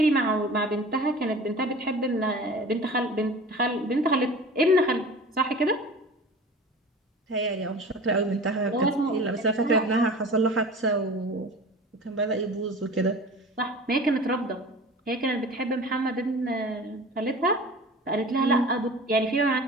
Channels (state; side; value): normal; both; correlation 0.39